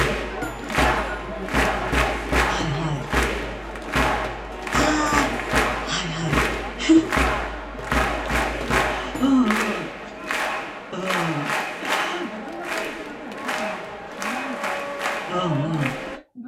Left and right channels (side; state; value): both; identical; correlation 1.00